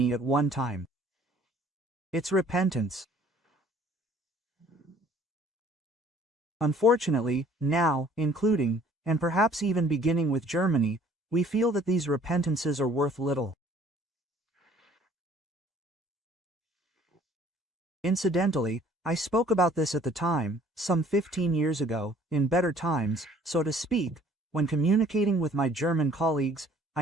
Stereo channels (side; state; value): both; normal; correlation 0.56